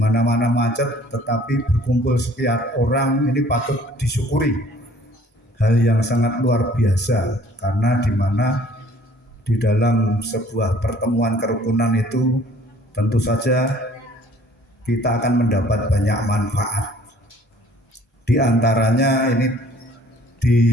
macet, tetapi berkumpul sekian orang ini patut disyukuri. Hal yang sangat luar biasa, karena di mana di dalam sebuah pertemuan kerukunan itu tentu saja kita akan mendapat banyak manfaat. Di antaranya ini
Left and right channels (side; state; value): both; normal; correlation 0.55